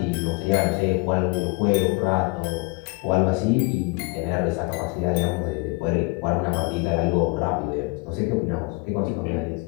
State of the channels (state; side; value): quieter; right; 27.0 dB